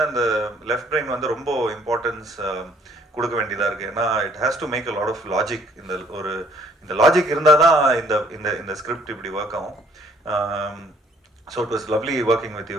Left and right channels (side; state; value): both; normal; correlation 0.62